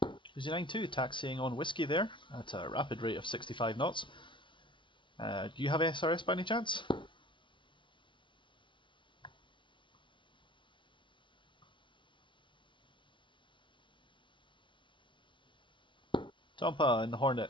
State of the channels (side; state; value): right; late; 0.24 ms